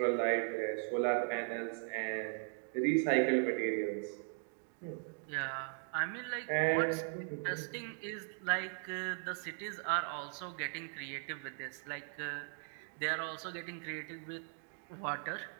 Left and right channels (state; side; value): silent; left; 52 dB below the other